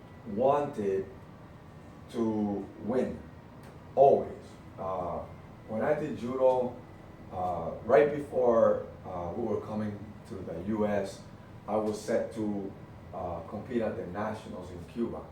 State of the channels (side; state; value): both; identical; correlation 1.00